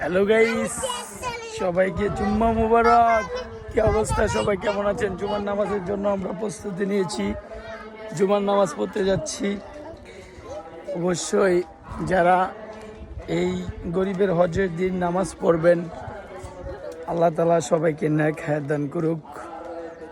Hello guys, সবাইকে জুম্মা মুবারক। কি অবস্থা, সবাই কেমন আছেন? জুমার নামাজের জন্য আমরা প্রস্তুতি নিয়েছি, জুমার নামাজ পড়তে যাচ্ছি। অবশ্যই যারা এই গরিবের হজের দিন নামাজ পড়বেন, আল্লাহ তাআলা সবাইকে নেক হায়াত দান করুক,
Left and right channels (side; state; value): both; identical; correlation 1.00